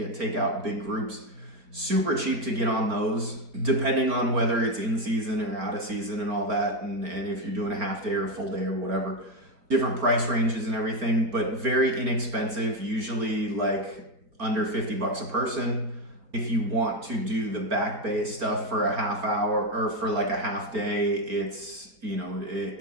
out big groups, super cheap to get on those, depending on whether it's in season or out of season and all that. And if you're doing a half day or a full day or whatever, different price ranges and everything, but very inexpensive, usually like under $50 a person. If you want to do the back bay stuff for a half hour or for like a half day, it's,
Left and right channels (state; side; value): late; left; 4.3 ms